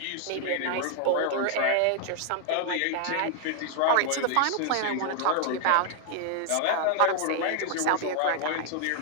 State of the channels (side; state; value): both; different; correlation 0.00